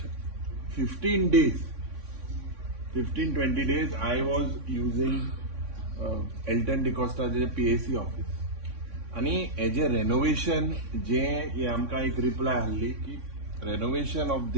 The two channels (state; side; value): late; left; 3.6 ms